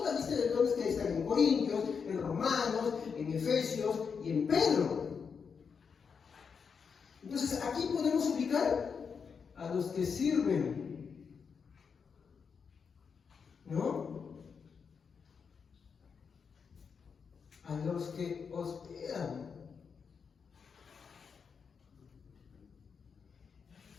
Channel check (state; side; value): quieter; right; 6.1 dB